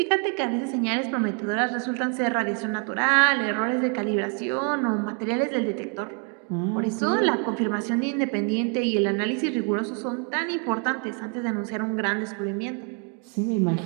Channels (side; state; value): left; quieter; 38.4 dB